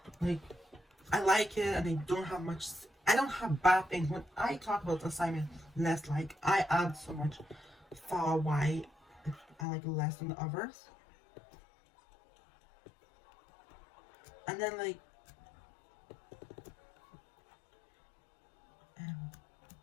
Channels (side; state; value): right; drops out; at 9.7 s